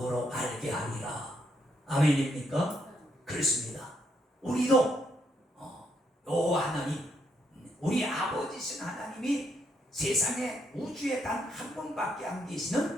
알게 하리라. 아멘입니까? 그렇습니다. 우리도 여호와 하나님, 우리 아버지신 하나님이 세상에 우주에 단 한 번밖에 안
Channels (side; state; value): both; normal; correlation 0.76